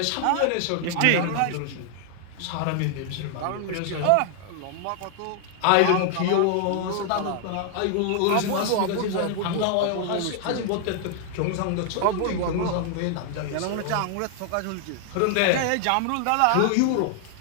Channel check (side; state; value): both; different; correlation 0.00